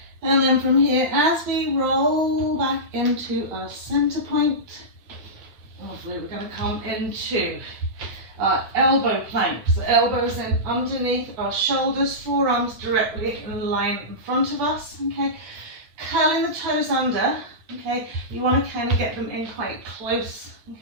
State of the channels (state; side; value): late; left; 9.0 ms